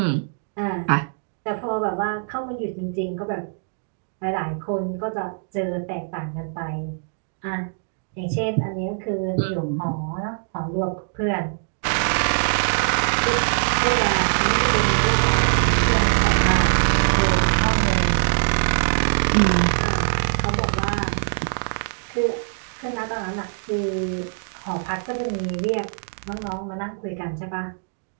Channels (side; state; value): left; silent; digital silence